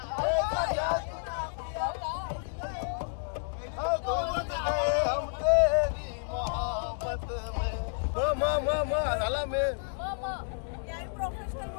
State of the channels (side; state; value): right; silent; digital silence